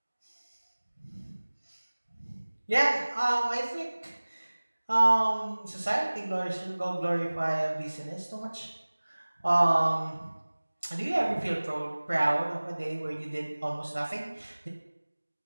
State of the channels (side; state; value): both; inverted; correlation -1.00